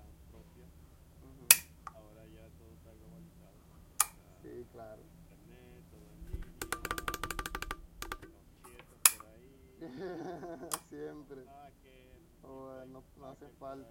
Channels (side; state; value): both; identical; correlation 1.00